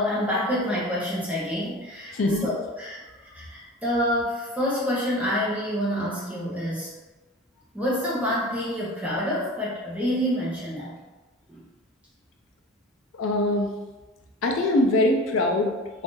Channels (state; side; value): normal; both; correlation 0.37